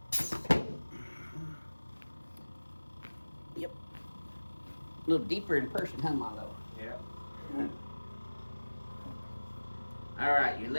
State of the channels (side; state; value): both; inverted; correlation -1.00